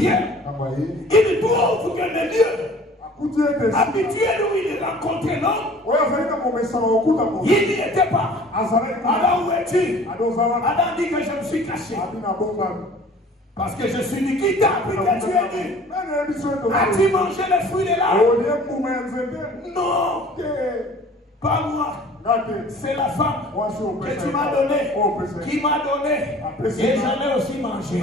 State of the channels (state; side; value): normal; both; correlation 0.48